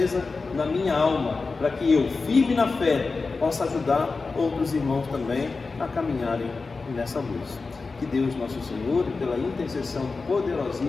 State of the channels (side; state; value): right; quieter; 4.1 dB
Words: na minha alma, para que eu, firme na fé, possa ajudar outros irmãos também a caminharem nessa luz. Que Deus nosso Senhor, pela intercessão